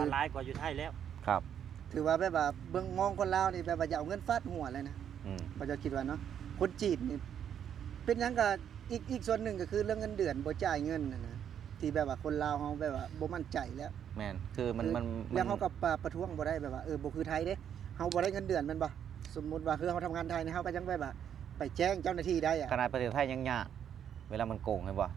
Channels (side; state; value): left; quieter; 9.0 dB